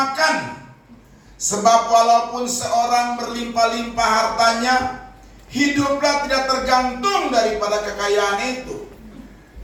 Sebab walaupun seorang berlimpah-limpah hartanya, hiduplah tidak tergantung daripada kekayaan itu.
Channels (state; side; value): identical; both; correlation 1.00